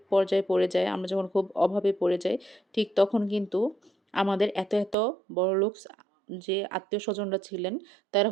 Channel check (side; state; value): left; drops out; at 5.0 s